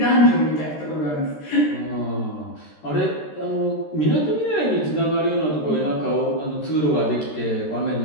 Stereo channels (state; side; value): late; right; 13 ms